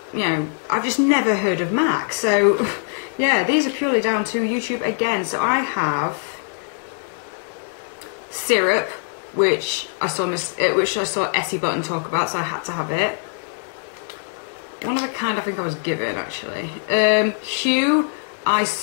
I've just never heard of MAC. So yeah, these are purely down to YouTube again. So I have Syrup, which I saw Essie Button talk about, so I had to have it. One of the kind I think I was given, actually. Hue, I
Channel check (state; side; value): silent; right; 64 dB below the other